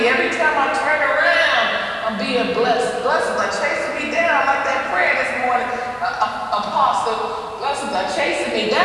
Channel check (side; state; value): both; identical; correlation 1.00